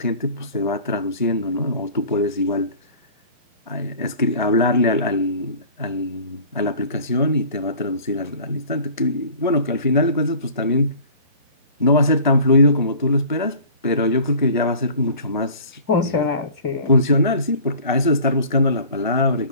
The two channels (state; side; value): inverted; both; correlation -0.45